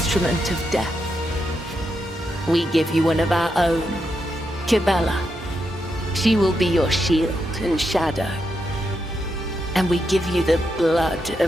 of death. We give you one of our own, Kibella. She will be your shield and shadow. And we give you the blood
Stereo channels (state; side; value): normal; both; correlation 0.83